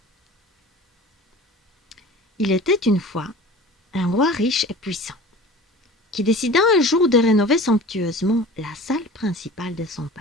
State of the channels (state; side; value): normal; both; correlation 0.40